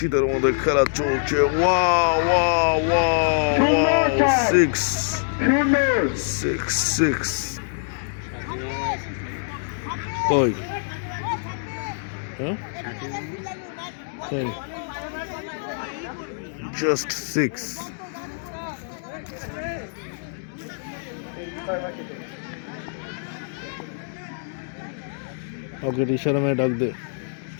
মধ্যে খেলা চলছে। Wow, six. কই জাস্ট সিক্স। ওকে, ইশারা মেয়ে ডাক দে,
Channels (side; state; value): right; silent; digital silence